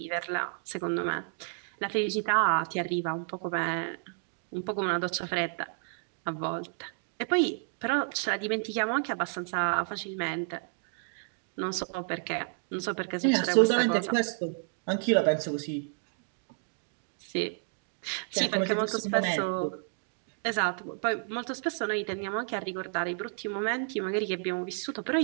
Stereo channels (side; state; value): left; silent; 57 dB below the other